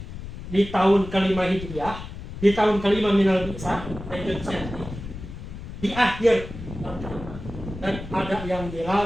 di tahun kelima Hijriah, di tahun kelima minal bi'tsah, di akhir, dan ada yang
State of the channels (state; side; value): noise; left; rumble, 11 dB below the sound